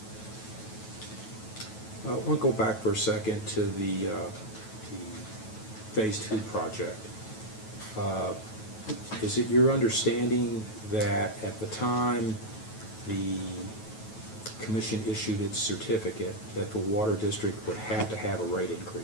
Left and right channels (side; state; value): right; late; 9.2 ms